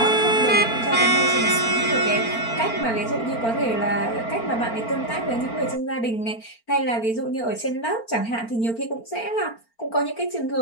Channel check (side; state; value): right; late; 4.4 ms